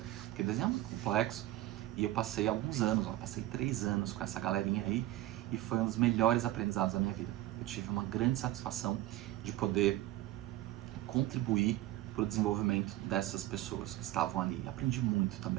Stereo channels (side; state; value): left; quieter; 15.4 dB